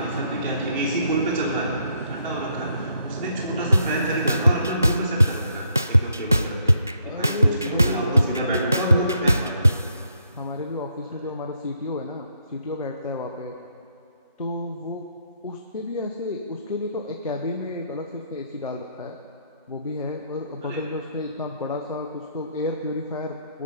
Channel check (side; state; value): both; inverted; correlation -0.73